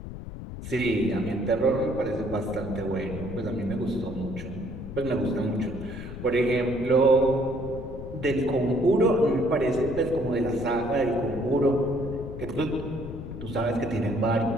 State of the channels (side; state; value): left; noise; rumble, 10 dB below the sound